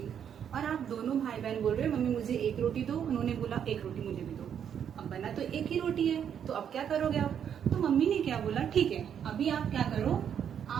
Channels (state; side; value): quieter; left; 8.5 dB